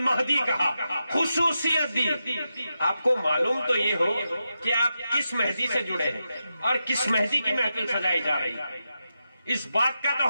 کہا، خصوصیت دی۔ آپ کو معلوم تو یہ ہو کہ آپ کس مہدی سے جڑے ہیں اور کس مہدی کی محفل سجائی جا رہی ہے، اس بات کا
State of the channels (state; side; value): inverted; both; correlation -0.88